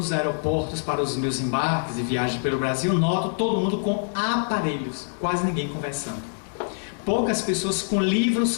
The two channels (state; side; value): silent; right; digital silence